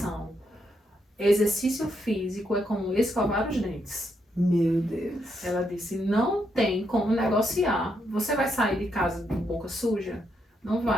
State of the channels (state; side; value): normal; both; correlation 0.79